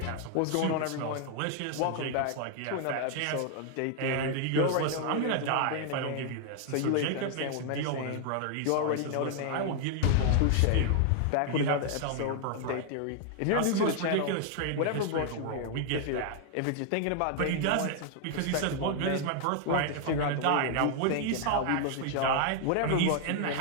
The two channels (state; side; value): different; both; correlation 0.00